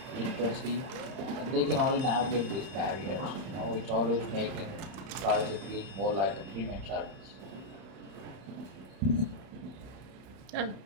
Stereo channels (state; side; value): late; left; 32 ms